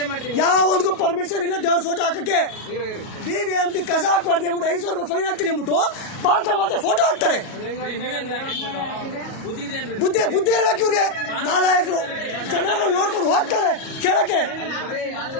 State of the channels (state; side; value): late; right; 37 ms